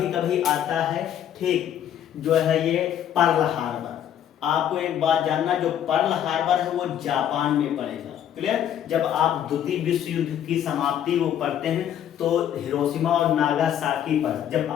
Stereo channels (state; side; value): quieter; right; 10.2 dB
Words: कभी आता है, ठीक, जो है ये पर्ल हार्बर। आपको एक बात जानना, जो पर्ल हार्बर है वो जापान में पड़ेगा। क्लियर? जब आप द्वितीय विश्व युद्ध की समाप्ति को पढ़ते हैं तो हिरोशिमा और नागासाकी पर जब